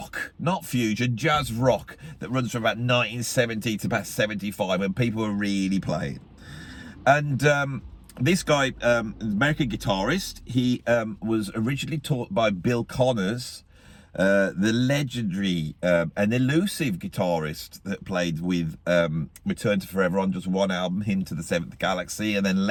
not fusion, jazz rock that runs from about 1970 to about 75 when people were really playing. And this guy, American guitarist, he was originally taught by Bill Connors, the legendary and elusive guitarist that played with Return to Forever on just one album, Hymn to the Seventh Galaxy, and then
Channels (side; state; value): both; identical; correlation 1.00